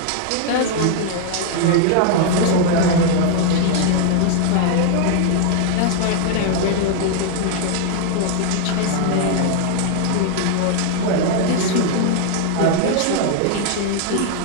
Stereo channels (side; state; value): both; different; correlation 0.00